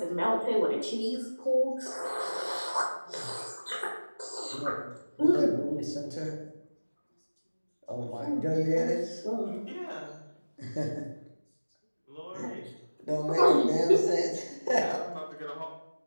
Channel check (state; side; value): inverted; both; correlation -1.00